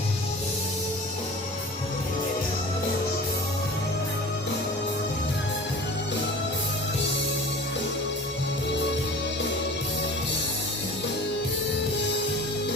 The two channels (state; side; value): normal; both; correlation 0.40